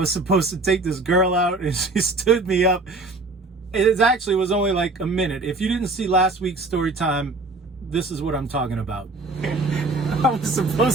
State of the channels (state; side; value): quieter; left; 3.3 dB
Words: supposed to take this girl out, and she stood me up. It actually was only like a minute. If you didn't see last week's story time, this is what I'm talking about. I was